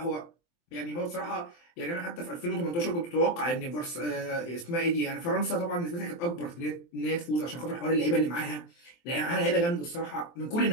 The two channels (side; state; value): right; late; 23 ms